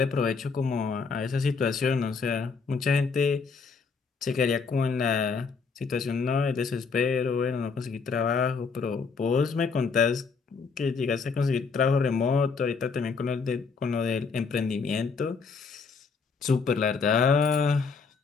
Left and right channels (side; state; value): right; quieter; 5.0 dB